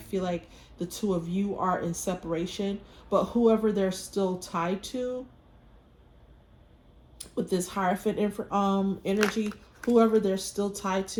like the two of you are in separation, but whoever they're still tied to with this Hierophant energy, whoever they're still tied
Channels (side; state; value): both; identical; correlation 1.00